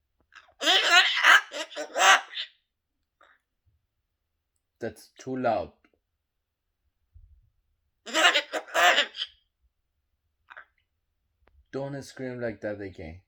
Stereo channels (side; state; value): both; identical; correlation 1.00